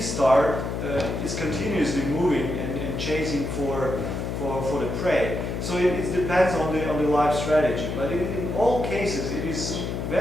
star is continuously moving and chasing for the prey. So it depends on the life strategy. But in all cases, it is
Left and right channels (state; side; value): noise; left; hum, 3 dB below the sound